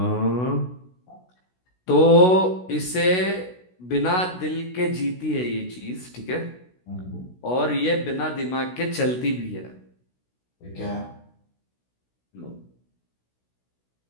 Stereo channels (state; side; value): late; right; 16 ms